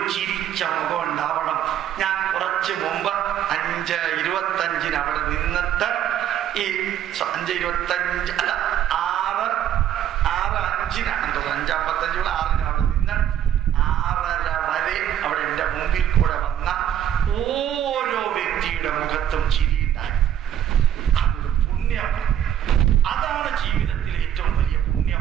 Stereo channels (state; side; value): quieter; left; 10.6 dB